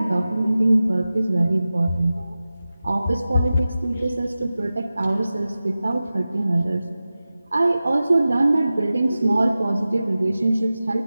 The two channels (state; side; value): inverted; both; correlation -0.95